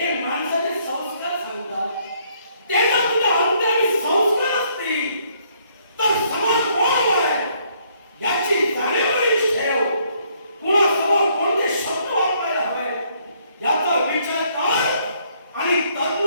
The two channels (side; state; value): both; inverted; correlation -0.68